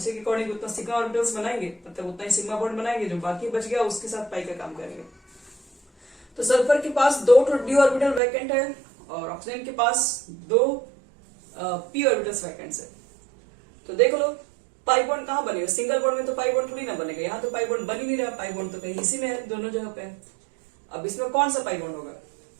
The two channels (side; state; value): left; drops out; at 8.2 s